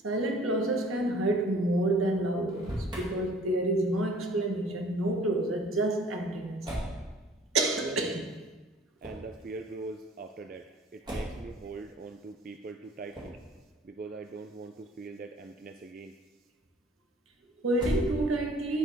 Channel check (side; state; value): both; normal; correlation 0.52